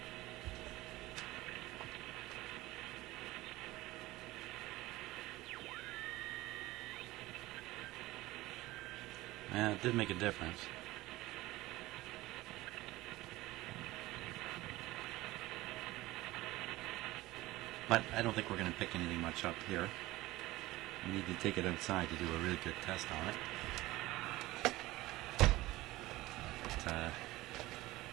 Yeah, it did make a difference. But I don't think we're going to pick anything much up here. We need to take it outside to do a really good test on it. But,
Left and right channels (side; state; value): left; quieter; 18.5 dB